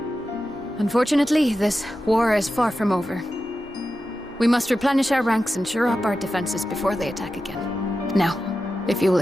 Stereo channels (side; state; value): both; normal; correlation 0.92